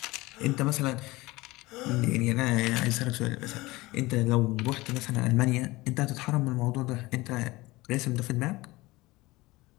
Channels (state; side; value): quieter; right; 20.7 dB